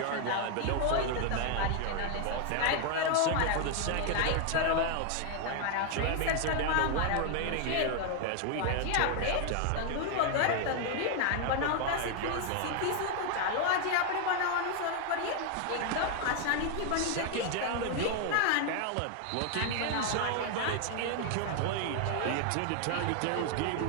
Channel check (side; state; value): both; different; correlation 0.00